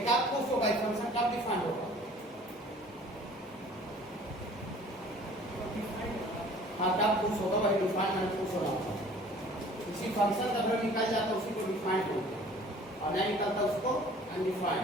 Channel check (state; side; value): normal; both; correlation 0.50